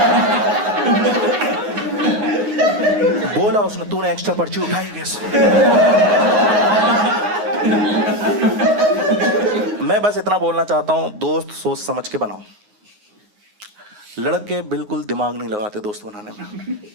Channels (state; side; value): late; left; 9.6 ms